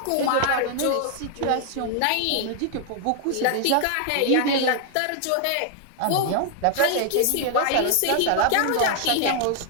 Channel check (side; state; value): both; different; correlation 0.00